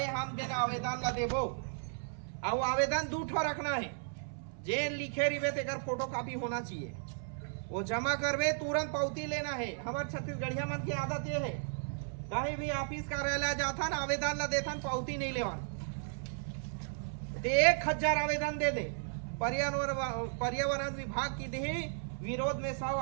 हम देना आवेदन ला देबो। और आवेदन 2 ठो रखना है, जे लिखे रिवे तेकर फोटो कॉपी होना चाहिए, वो जमा करवे तुरंत पावती लेना है। हमारे छत्तीसगढ़िया मन की आदत ये है, कहीं भी ऑफिस कार्यालय जाता ना आवेदन ला देता पावती नहीं लेवा, 1000 आवेदन दे दे। पर्यावरण विभाग की दी विरोध में 100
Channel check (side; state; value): left; silent; 55 dB below the other